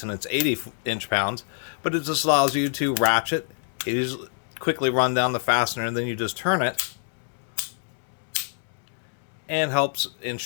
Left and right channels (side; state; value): right; silent; digital silence